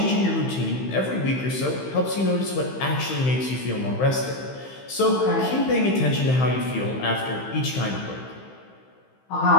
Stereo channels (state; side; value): late; right; 15 ms